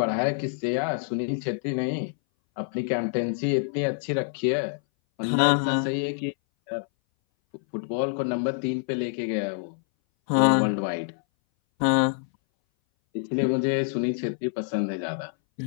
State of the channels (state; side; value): silent; right; 59 dB below the other